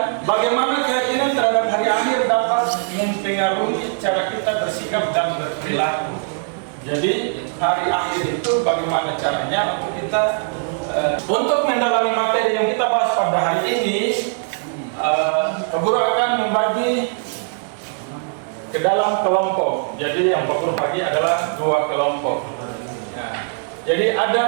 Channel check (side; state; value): left; silent; 64 dB below the other